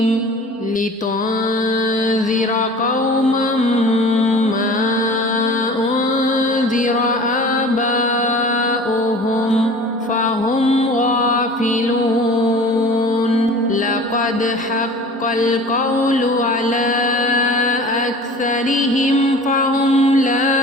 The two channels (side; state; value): both; normal; correlation 0.42